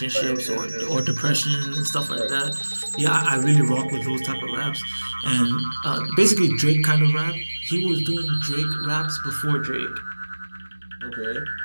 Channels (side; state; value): both; inverted; correlation -1.00